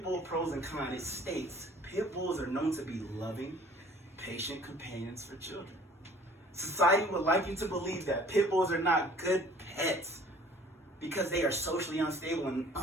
Bull Pros and Cons, it states, pit bulls are known to be loving, patient companions for children. Society would like you to believe that pit bulls are not good pets because they are socially unstable and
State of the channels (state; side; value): normal; both; correlation 0.52